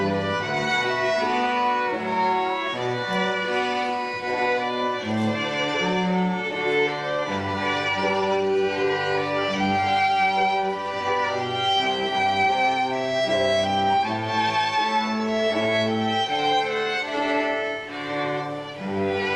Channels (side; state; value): both; identical; correlation 1.00